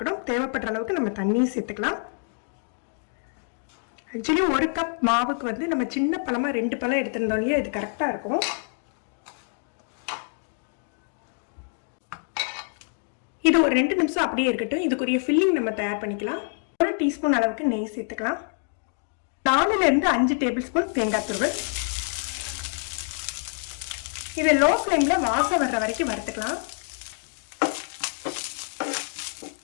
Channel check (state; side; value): silent; right; 58 dB below the other